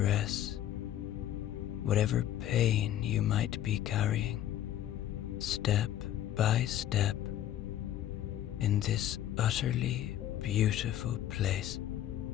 whatever pain you might be carrying, step by step, in this utterly beautiful place.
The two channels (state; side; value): quieter; right; 12.0 dB